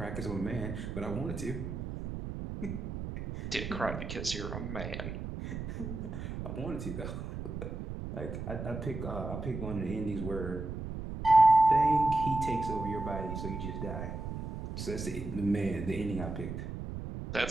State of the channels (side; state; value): right; noise; rumble, 6 dB below the sound